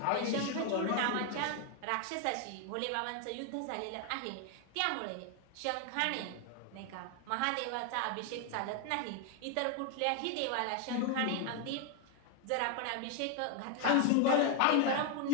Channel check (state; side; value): different; both; correlation 0.01